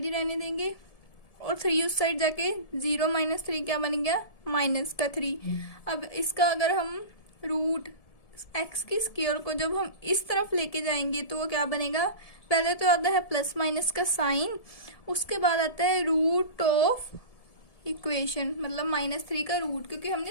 ही रहने देंगे और 3 उस साइड जाके 0 - 3 क्या बन गया, -3। अब इसका अगर हम रूट एक्स की स्क्वायर को जब हम इस तरफ लेके जाएंगे तो वो क्या बनेगा, पहले तो आता है प्लस माइनस का साइन, उसके बाद आता है रूट ऑफ इक्वेशन मतलब -3 का रूट, क्योंकि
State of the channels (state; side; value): late; right; 1.7 ms